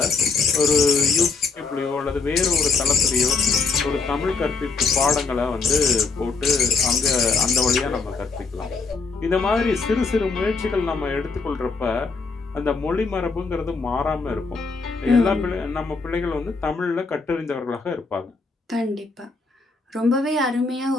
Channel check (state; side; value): quieter; right; 4.4 dB